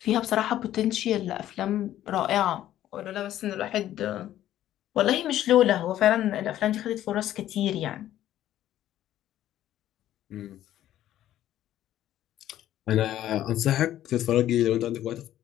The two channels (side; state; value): right; quieter; 12.7 dB